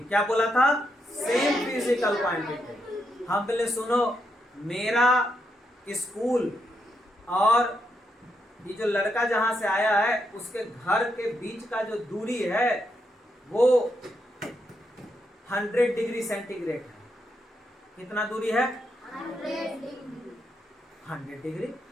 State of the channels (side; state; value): both; normal; correlation 0.80